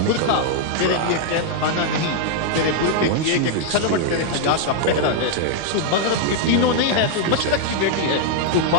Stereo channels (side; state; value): both; different; correlation 0.00